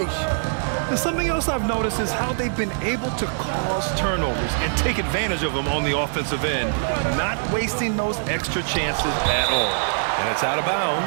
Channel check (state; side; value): silent; left; digital silence